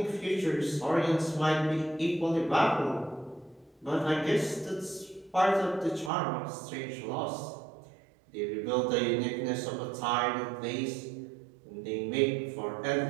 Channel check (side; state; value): left; drops out; at 6.1 s